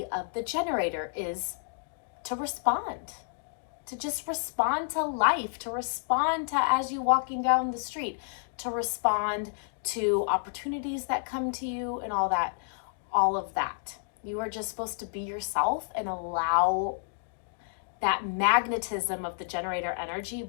of the generator, is to respond. To just respond to life, to respond to as you walking down the street, to respond to opportunities that come to you and all of that. You are just supposed to be yourself and allow that magnetism of the generator energy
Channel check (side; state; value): right; silent; digital silence